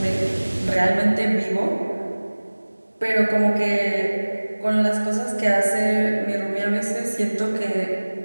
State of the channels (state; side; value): inverted; both; correlation -1.00